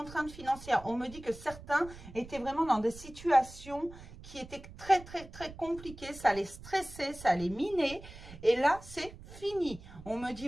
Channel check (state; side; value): noise; right; rumble, 16 dB below the sound